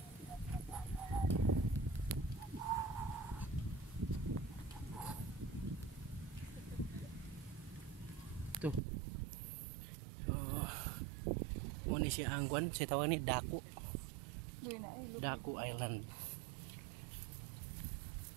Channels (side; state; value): left; drops out; at 8.8 s